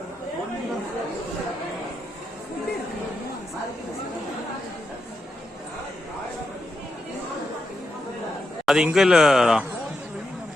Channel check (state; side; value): normal; both; correlation 0.84